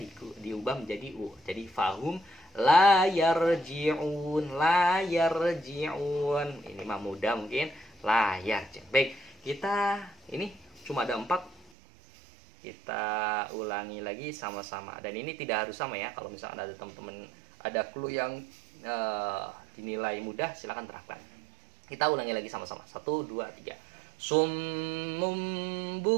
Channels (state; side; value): drops out; left; at 11.7 s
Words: diubah menjadi u. Jadi fahum la yarji'un. Ini mah mudah mungkin la yarji'. Baik, kita ini cuma ada 4. Kita ulangi lagi sama-sama. Dan ini tidak harus sama ya. Kalau misalnya ada teman-teman ada clue yang dinilai mudah, silakan terapkan. Kita ulangi lagi sama-sama. 1, 2, 3. Summum